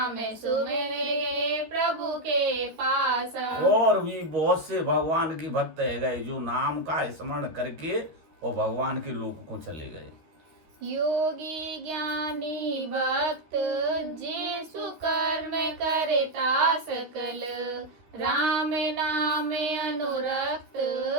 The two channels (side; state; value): left; late; 13 ms